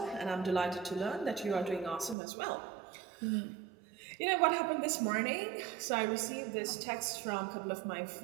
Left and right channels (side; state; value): left; drops out; at 2.1 s